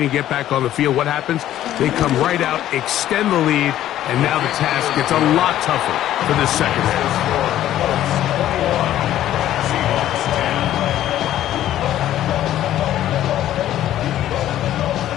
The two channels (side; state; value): right; quieter; 12.6 dB